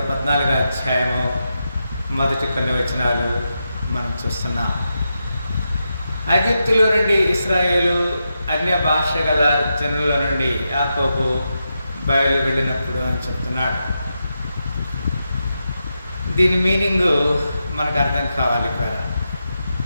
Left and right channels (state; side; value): inverted; both; correlation -0.87